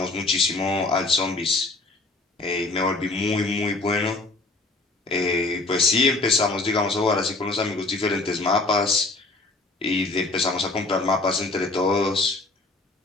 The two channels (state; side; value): quieter; right; 3.3 dB